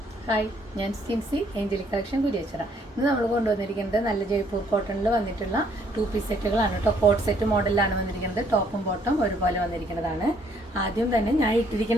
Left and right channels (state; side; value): normal; both; correlation 0.66